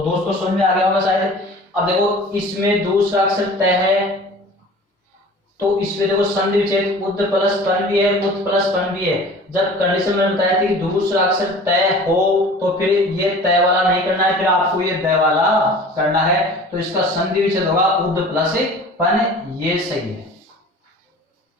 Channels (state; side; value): normal; both; correlation 0.43